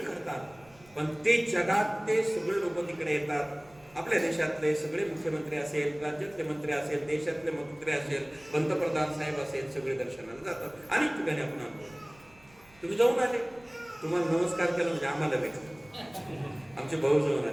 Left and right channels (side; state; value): right; noise; rumble, 27 dB below the sound